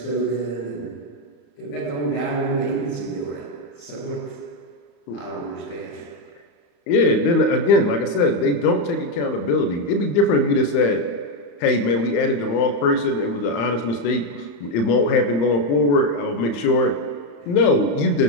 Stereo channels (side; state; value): right; late; 34 ms